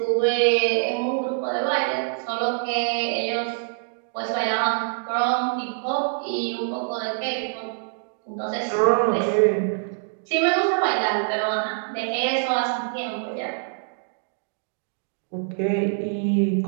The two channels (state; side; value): silent; left; digital silence